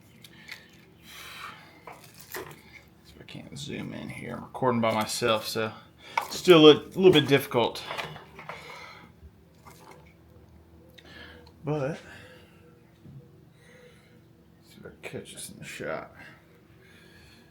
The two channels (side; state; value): both; identical; correlation 1.00